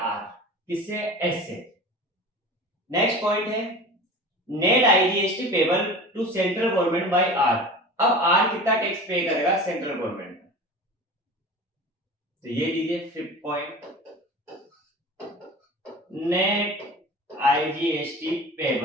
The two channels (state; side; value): normal; both; correlation 0.36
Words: किससे, एस से। नेक्स्ट पॉइंट है net IGST payable to central government by R. अब आर कितना टैक्स पे करेगा सेंट्रल गवर्नमेंट, तो ये लीजिए 5th point, net IGST